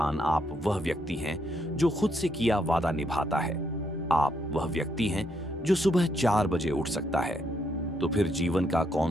आप वह व्यक्ति हैं जो खुद से किया वादा निभाता है। आप वह व्यक्ति हैं जो सुबह 4 बजे उठ सकता है। तो फिर जीवन का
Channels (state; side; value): normal; both; correlation 0.76